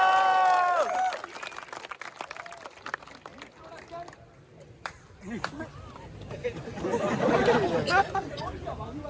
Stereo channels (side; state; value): both; identical; correlation 1.00